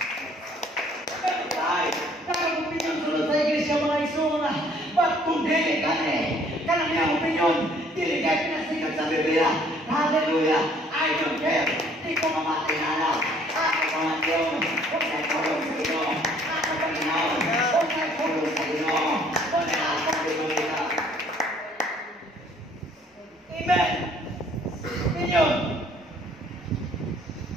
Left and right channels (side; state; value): both; normal; correlation 0.60